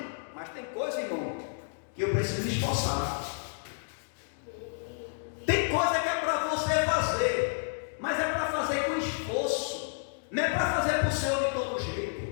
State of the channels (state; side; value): silent; right; digital silence